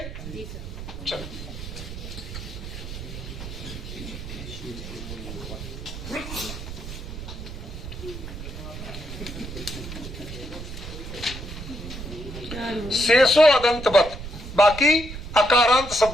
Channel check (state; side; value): noise; right; rumble, 9 dB below the sound